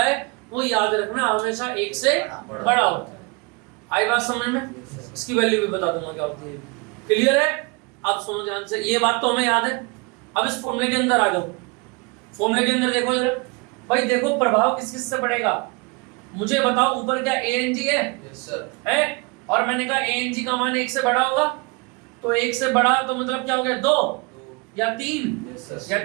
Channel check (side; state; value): left; quieter; 28.8 dB